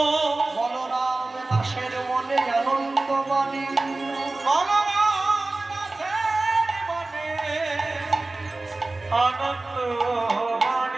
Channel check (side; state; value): left; quieter; 3.1 dB